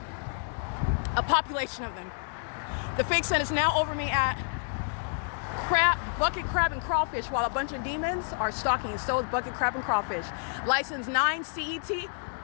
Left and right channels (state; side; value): silent; right; 57 dB below the other